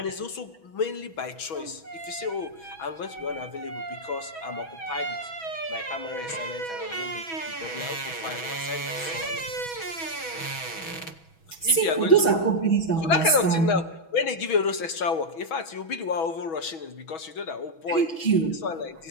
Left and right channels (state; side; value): late; right; 6.2 ms